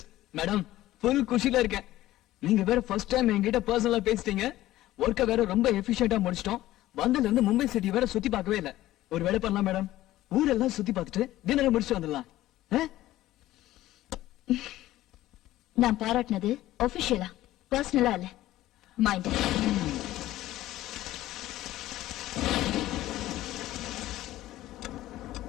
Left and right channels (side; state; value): right; quieter; 15.3 dB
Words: Madam, full குஷில இருக்கேன். நீங்க வேற ஃபர்ஸ்ட் டைம் என்கிட்ட பர்சனலா பேசிட்டீங்க. ஒர்க்க வேற ரொம்ப எஃபிஷியன்ட்டா முடிச்சிட்டோம். வந்ததுல இருந்து மும்பை சிட்டி வேற சுத்தி பார்க்கவே இல்ல. ஒரு வேலை பண்ணலாம் மேடம், ஊரெல்லாம் சுத்தி பார்த்துட்டு டின்னர் முடிச்சுட்டு வந்துடலாம். நான் பாராட்டினது ஆபீஷியலா, பர்சனலா இல்ல. மைண்ட்.